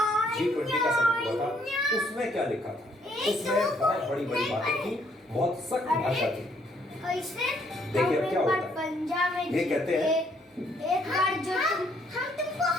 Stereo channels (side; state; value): both; normal; correlation 0.68